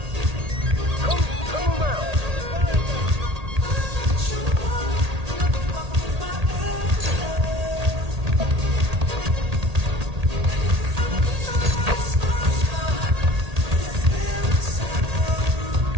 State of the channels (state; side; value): late; left; 1.8 ms